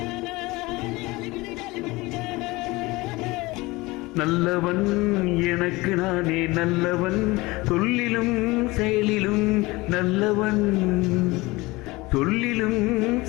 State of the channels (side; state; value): right; quieter; 21.9 dB